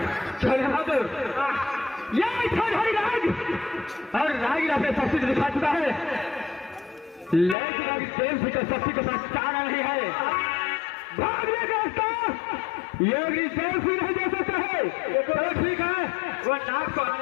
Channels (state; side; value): drops out; right; at 7.6 s